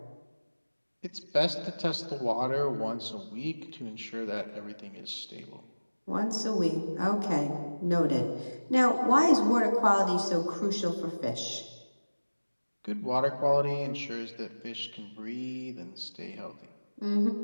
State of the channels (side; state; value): both; inverted; correlation -1.00